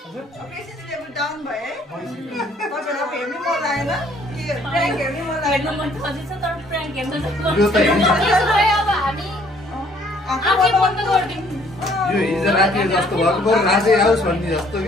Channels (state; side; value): normal; both; correlation 0.61